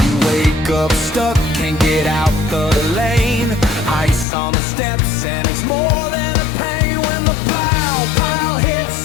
You wake up stuck, can't get out the lane, ice on the steps, and it's more than a pain when the pile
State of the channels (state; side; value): drops out; right; at 4.2 s